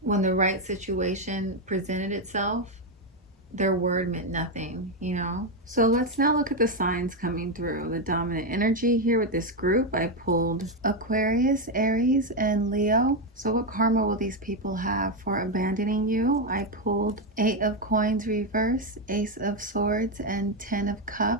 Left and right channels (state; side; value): normal; both; correlation 0.06